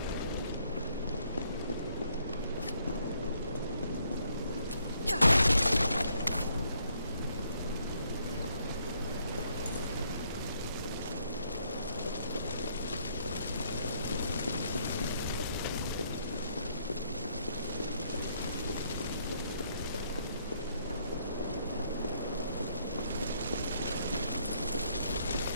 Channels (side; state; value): both; inverted; correlation -0.70